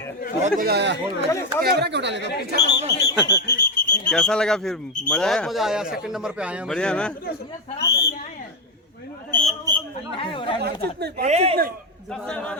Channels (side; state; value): both; normal; correlation 0.08